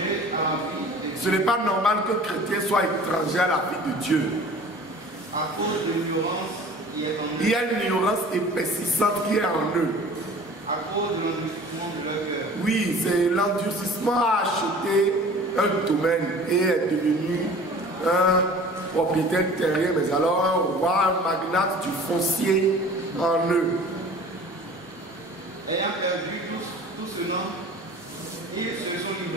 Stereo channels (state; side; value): normal; both; correlation 0.44